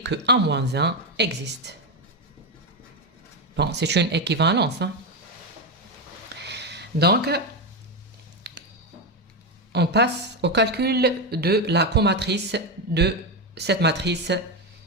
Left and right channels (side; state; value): both; normal; correlation 0.09